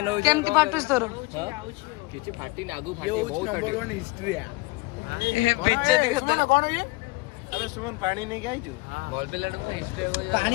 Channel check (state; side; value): quieter; right; 23.4 dB